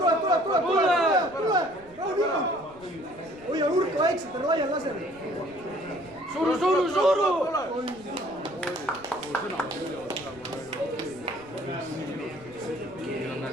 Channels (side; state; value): right; noise; rumble, 24 dB below the sound